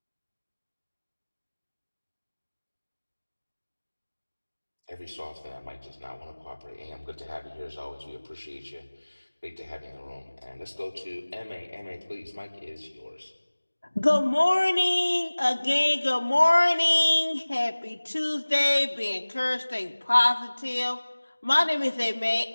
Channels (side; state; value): both; inverted; correlation -1.00